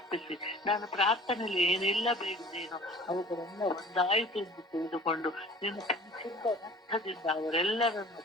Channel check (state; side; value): normal; both; correlation 0.46